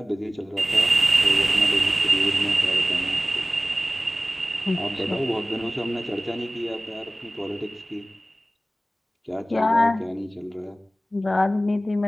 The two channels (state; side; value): normal; both; correlation 0.97